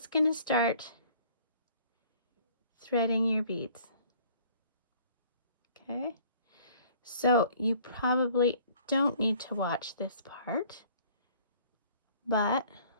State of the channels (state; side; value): inverted; both; correlation -0.55